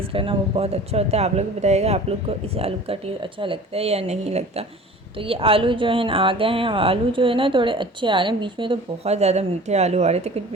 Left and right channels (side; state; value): both; normal; correlation 0.43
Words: है ना वो बहुत अच्छा होता है। आप लोग बताइएगा आप लोग को इस आलू का टेस्ट अच्छा लगता है या नहीं लगता। तो ये आलू जो है ना आ गए हैं, आलू जो है ना थोड़े अच्छे आ रहे हैं। बीच में तो बहुत ज़्यादा मीठे आलू आ रहे थे, कुछ